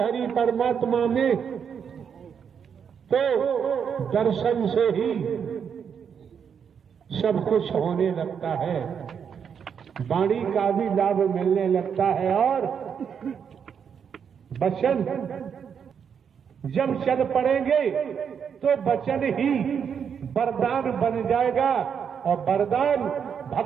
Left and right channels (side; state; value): left; quieter; 7.3 dB